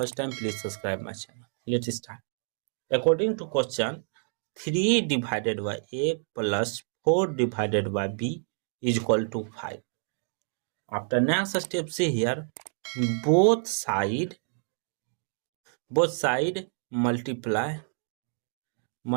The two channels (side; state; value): left; silent; digital silence